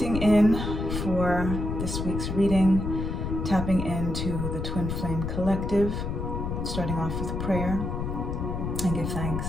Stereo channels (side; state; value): left; noise; rumble, 3 dB below the sound